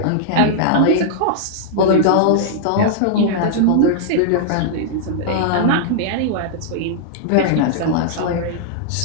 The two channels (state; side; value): different; both; correlation -0.01